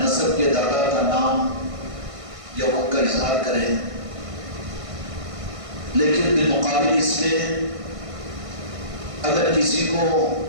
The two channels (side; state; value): left; late; 1.6 ms